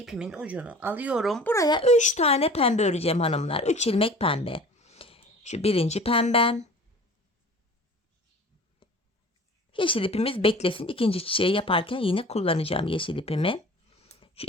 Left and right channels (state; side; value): normal; both; correlation 0.43